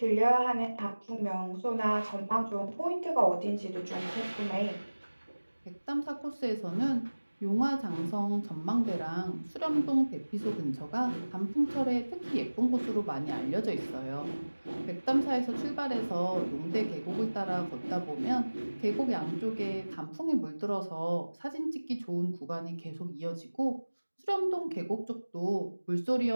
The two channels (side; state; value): both; inverted; correlation -1.00